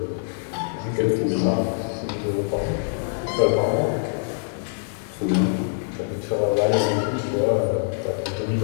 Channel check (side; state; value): right; silent; digital silence